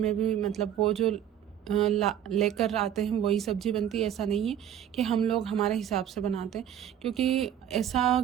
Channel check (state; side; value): quieter; left; 10.2 dB